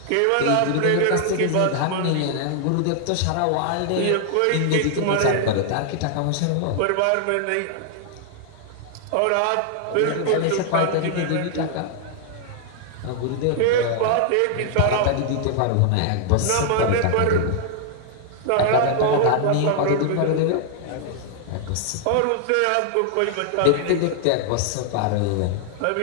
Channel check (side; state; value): both; different; correlation 0.00